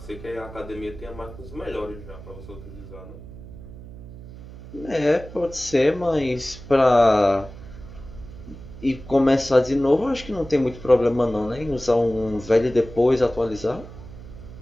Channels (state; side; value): noise; right; hum, 15 dB below the sound